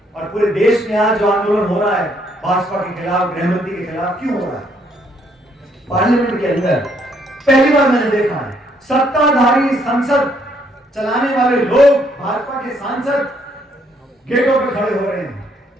और पूरे देश में आज जो आंदोलन हो रहा है भाजपा के खिलाफ, गृहमंत्री के खिलाफ, क्यों हो रहा है? पार्लियामेंट के अंदर पहली बार मैंने देखा है सत्ताधारी संसद चलाने वाले लोग, भाजपा के सांसद गेटों पे खड़े हो रहे हैं,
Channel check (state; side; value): normal; both; correlation 0.69